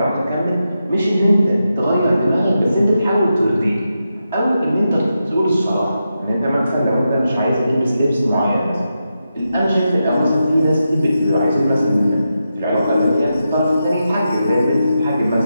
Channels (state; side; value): inverted; both; correlation -0.88